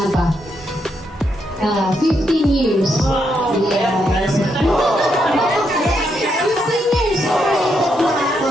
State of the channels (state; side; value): normal; both; correlation 0.79